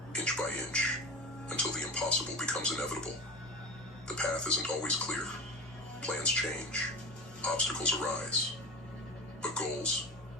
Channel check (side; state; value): both; normal; correlation 0.31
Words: inch by inch, until the impossible becomes inevitable. The path isn't always clear. Plans change. Obstacles arise. But goals,